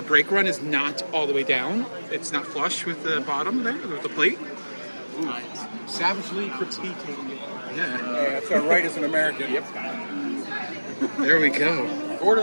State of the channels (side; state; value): both; inverted; correlation -1.00